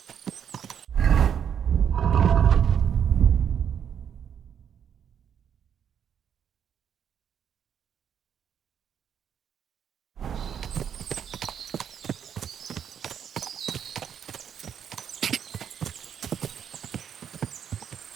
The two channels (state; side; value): quieter; left; 8.4 dB